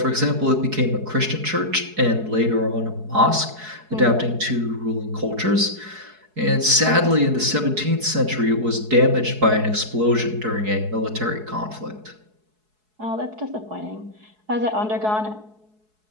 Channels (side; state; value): left; late; 4.7 ms